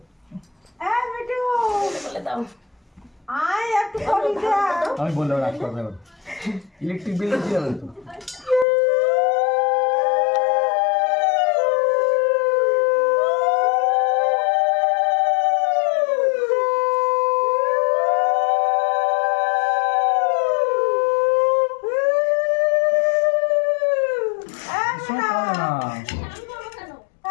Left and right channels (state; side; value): drops out; right; at 8.7 s